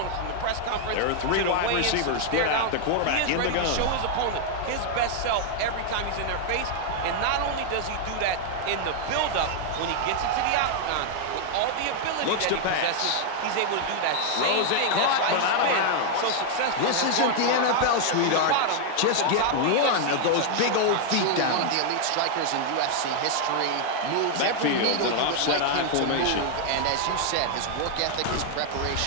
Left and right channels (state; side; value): different; both; correlation 0.00